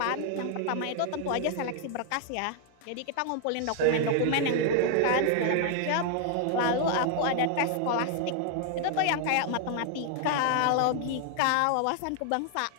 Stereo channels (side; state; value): both; different; correlation 0.00